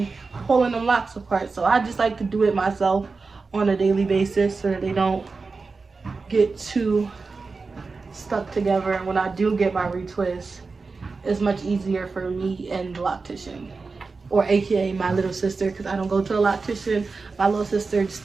pulling them locks apart. So I just like to do it myself on a daily basis so that they don't get too stuck together. And when I do get my retwist, it's much easier for me and the loctician. or aka my little sister, because I don't go to a loctician. My little sister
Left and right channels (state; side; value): quieter; left; 4.3 dB